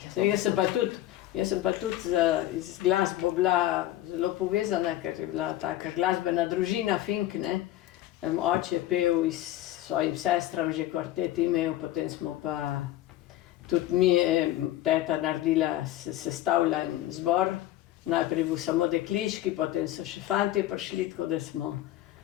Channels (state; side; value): quieter; right; 14.3 dB